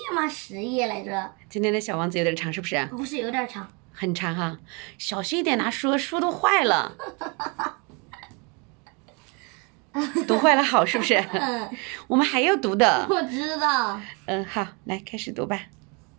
吗？10页来着。今天的小王子有点长，是不是？不是有点长。很长哈，小心一点拿书，书都坏了。读坏了好是不是？我们还要读的。我知道。好，来开始读吧。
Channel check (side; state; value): left; quieter; 31.6 dB